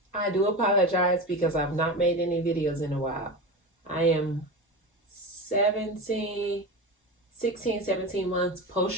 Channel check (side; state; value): both; normal; correlation 0.24